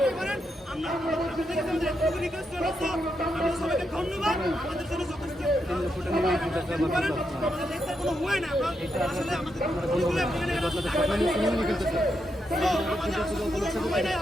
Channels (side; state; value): both; normal; correlation 0.83